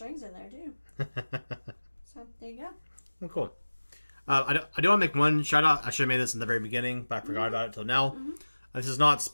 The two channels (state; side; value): inverted; both; correlation -1.00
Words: in there too. So there you go. Well, cool. I do want to make one shout out. I should have made this in the very beginning, but I forgot about it till now. This is not